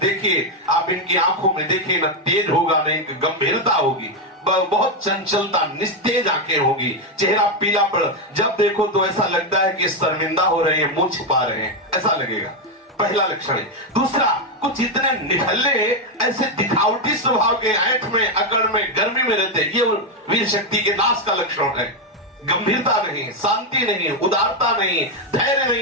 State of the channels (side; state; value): both; normal; correlation 0.05